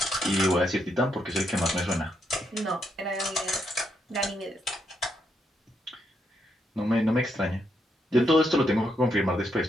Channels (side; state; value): both; normal; correlation 0.78